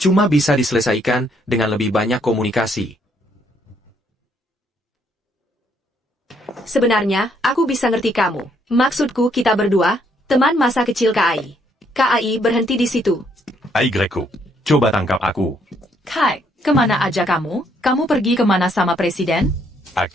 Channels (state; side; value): normal; both; correlation 0.70